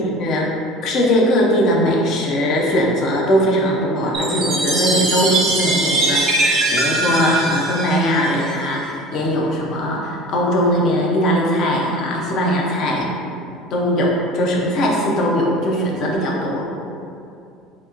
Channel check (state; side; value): normal; both; correlation 0.39